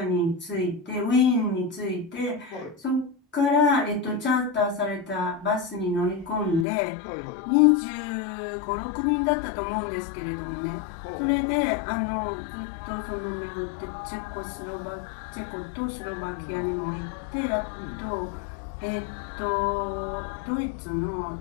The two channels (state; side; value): drops out; right; at 6.7 s